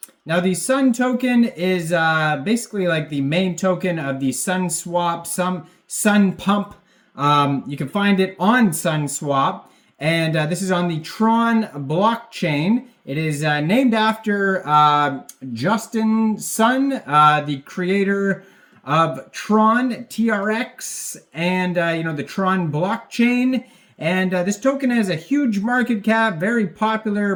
Now the Sun token is basically like the main token of the Sunswap, Sunpump. You can find it on Sunswap, and this is on the Tron blockchain. It is named after Justin Sun, the creator of Tron, TRX, and the Tron blockchain. And this token has a huge market cap, very popular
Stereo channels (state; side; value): identical; both; correlation 1.00